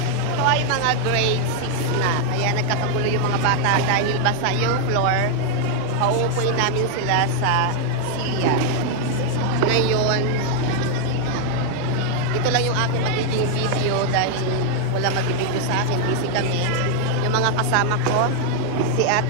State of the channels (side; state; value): both; different; correlation 0.00